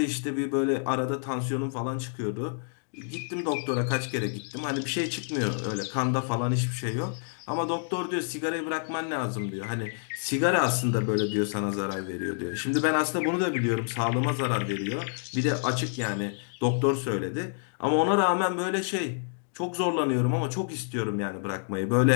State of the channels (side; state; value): right; silent; digital silence